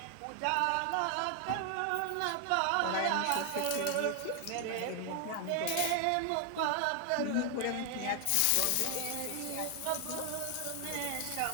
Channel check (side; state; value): both; different; correlation 0.00